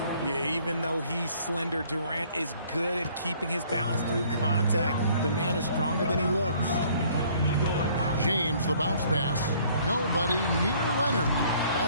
Yeah, even though he's slender, Durant is good at keeping his balance through contact. The man is stronger than he looks. James, the bounce pass. Nobody near Leonard.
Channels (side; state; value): both; inverted; correlation -0.59